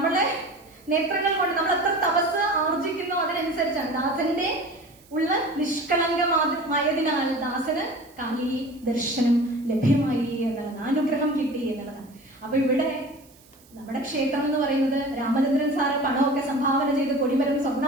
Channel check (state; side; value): noise; right; hiss, 28 dB below the sound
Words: നേത്രങ്ങൾ കൊണ്ട് നമ്മൾ എത്ര തപസ് ആർജിക്കുന്നു അതിനനുസരിച്ചാണ്. ദാസന്റെ ഉള്ള നിഷ്കളങ്കമായതിനാൽ ദാസന് കാളി ദർശനം ലഭ്യമായി എന്നുള്ളതാണ്, അനുഗ്രഹം കിട്ടി എന്നുള്ളതാണ്. അപ്പൊ ഇവിടെ നമ്മുടെ ക്ഷേത്രം എന്ന് പറയുന്നത് രാമചന്ദ്രൻ സാറ് പണമൊക്കെ സംഭാവന ചെയ്ത് കൊടിമരം